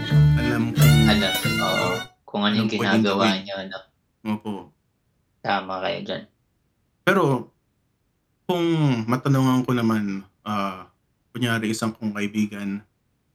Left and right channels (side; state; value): both; identical; correlation 1.00